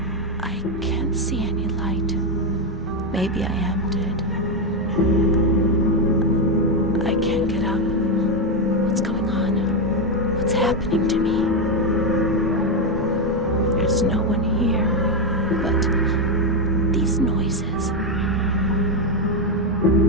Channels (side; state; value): both; normal; correlation 0.07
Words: I can't see any light. Maybe I am dead. I can't get up. What's going on? What's happening to me? There's no one here, but these noises.